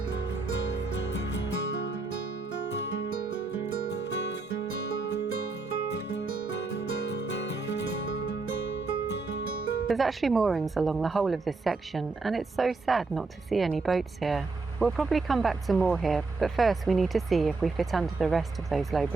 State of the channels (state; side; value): quieter; left; 3.9 dB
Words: There's actually moorings along the whole of this section, and it's so sad not to see any boats here. We'll probably come back to more here, but first we need to see if we fit under the rest of those low